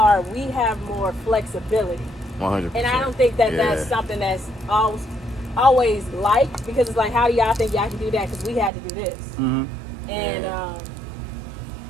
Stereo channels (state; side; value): drops out; left; at 8.7 s